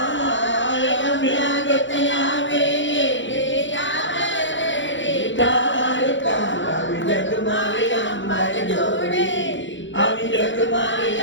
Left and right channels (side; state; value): right; late; 0.54 ms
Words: આવી જગ મારે